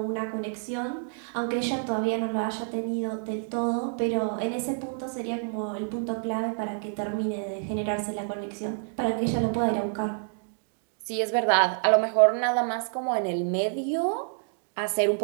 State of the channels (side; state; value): left; silent; 59 dB below the other